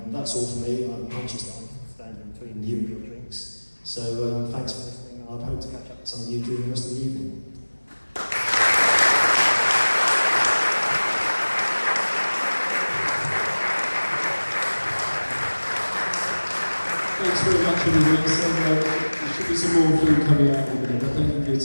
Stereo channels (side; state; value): both; inverted; correlation -1.00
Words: that's all for me. I'm conscious that I'm standing between you and your drinks. So thanks for listening, and I hope to catch up with some of you during the rest of the evening. Thanks very much, everybody. So there should be some more food coming out in a minute, but thank you for your